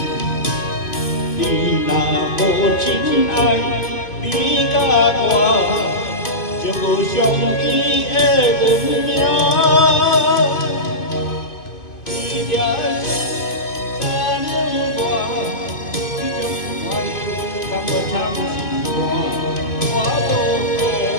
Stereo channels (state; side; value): late; right; 2.5 ms